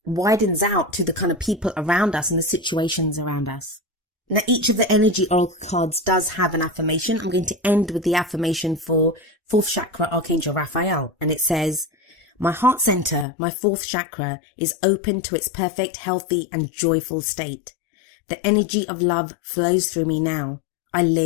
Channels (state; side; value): drops out; right; at 13.2 s